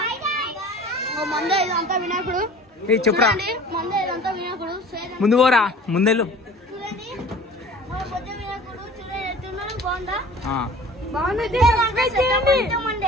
మందే ఇదంతా వినాయకుడు. చెప్పురా. మందే ఇదంతా వినాయకుడు. ముందు పోరా, ముందెళ్ళు. చూడండి మా పొద్దు వినాయకుడు. చూడండి ఎట్టున్నాడు, బాగుందా?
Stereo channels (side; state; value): both; normal; correlation 0.44